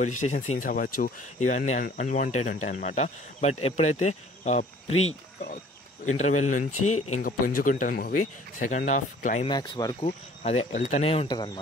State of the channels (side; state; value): both; normal; correlation 0.53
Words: స్టేషన్ సీన్స్ అవ్వచ్చు, ఇవన్నీ అన్వాంటెడ్ ఉంటాయి అనమాట. బట్ ఎప్పుడైతే ప్రీ ఇంటర్వెల్ నుంచి ఇంకా పుంజుకుంటుంది మూవీ, సెకండ్ హాఫ్ క్లైమాక్స్ వరకు అదే వెళ్తూనే ఉంటుంది